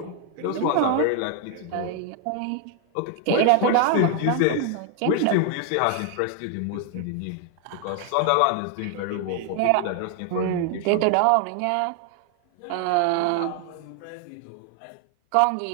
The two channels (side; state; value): both; different; correlation 0.00